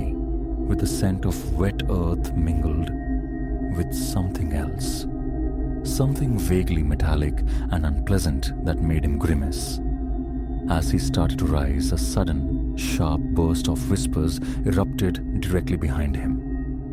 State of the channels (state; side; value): identical; both; correlation 1.00